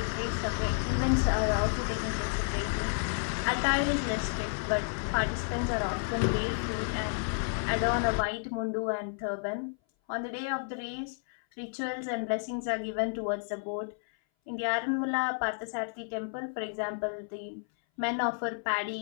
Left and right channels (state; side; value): silent; right; 57 dB below the other